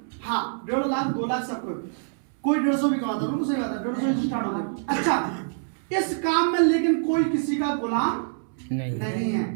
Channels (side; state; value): left; silent; 61 dB below the other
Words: हाँ 1.5 लाख 2 लाख सब कोई 150 भी कमाता है, बिल्कुल सही बात है, 150 से स्टार्ट होते हैं। अच्छा इस काम में लेकिन कोई किसी का गुलाम नहीं है,